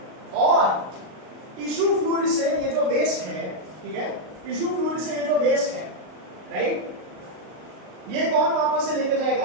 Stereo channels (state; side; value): late; left; 38 ms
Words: और टिश्यू फ्लूइड से ये जो वेस्ट है, ठीक है, टिश्यू फ्लूइड से ये जो वेस्ट है, राइट, ये कौन वापस से लेके